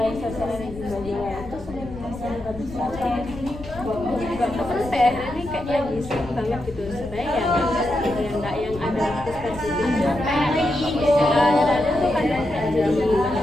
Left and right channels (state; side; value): noise; left; rumble, 14 dB below the sound